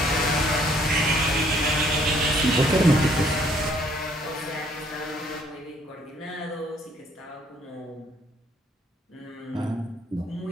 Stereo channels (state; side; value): normal; both; correlation 0.64